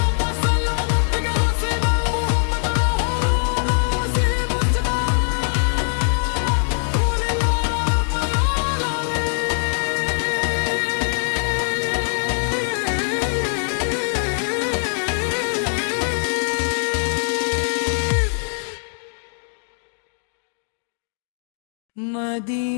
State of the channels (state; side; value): silent; right; digital silence